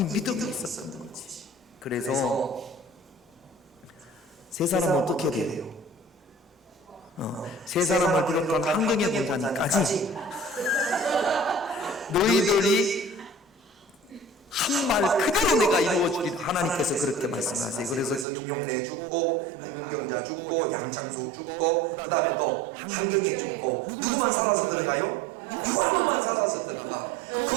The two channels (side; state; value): left; drops out; at 18.2 s